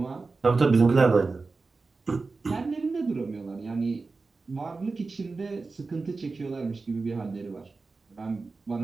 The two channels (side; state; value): left; quieter; 4.0 dB